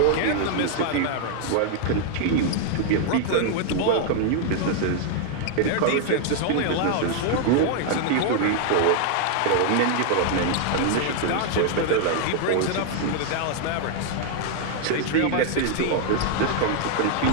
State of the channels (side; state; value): both; different; correlation 0.00